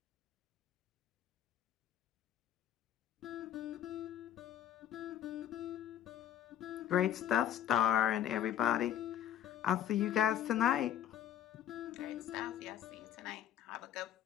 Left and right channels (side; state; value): right; quieter; 10.9 dB